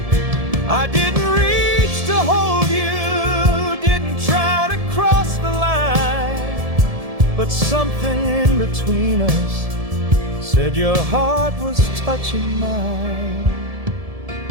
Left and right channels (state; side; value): late; left; 1.7 ms